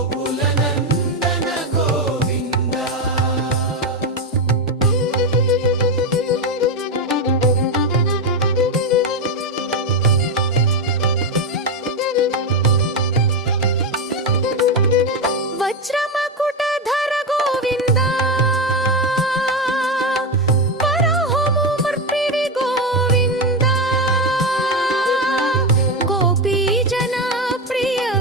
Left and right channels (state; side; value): normal; both; correlation 0.11